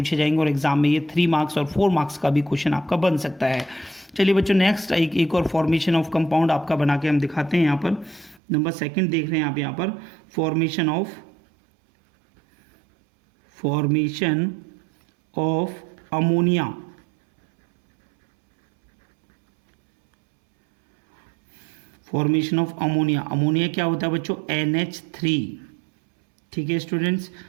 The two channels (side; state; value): left; drops out; at 8.4 s